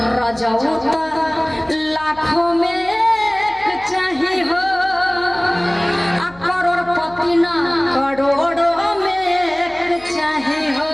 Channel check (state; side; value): noise; left; hum, 25 dB below the sound